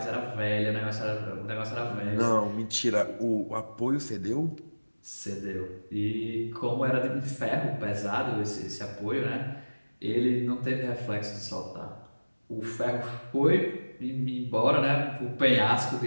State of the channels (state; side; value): inverted; both; correlation -1.00